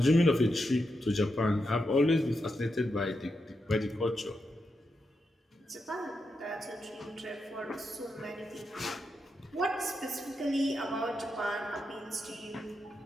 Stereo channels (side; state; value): both; normal; correlation 0.85